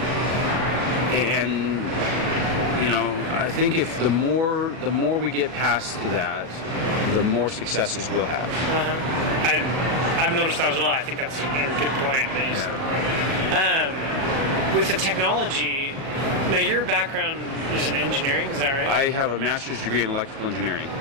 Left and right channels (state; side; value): late; left; 37 ms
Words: And I think if the more we get past that, the more successes we'll have. I've noticed that as well. I think that's a good point that you said. With the technology, now your background is in engineering, is that right? I have a master's degree in electrical engineering.